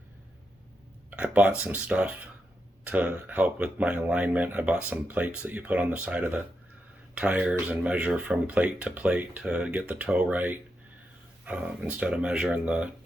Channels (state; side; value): normal; both; correlation 0.85